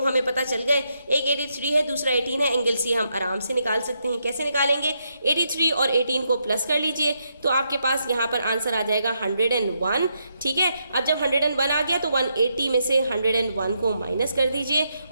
हमें पता चल गए, एक 83 है दूसरा 18 है। एंगल सी हम आराम से निकाल सकते हैं। कैसे निकालेंगे, 83 और 18 को प्लस कर लीजिए तो आपके पास यहाँ पर आंसर आ जाएगा 101। ठीक है, अब जब 101 आ गया तो 180 में से 101 को माइनस कर दीजिए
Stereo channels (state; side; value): inverted; both; correlation -0.80